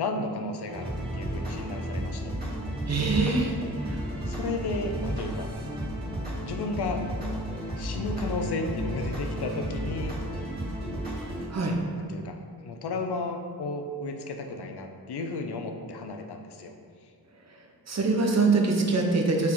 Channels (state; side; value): normal; both; correlation 0.43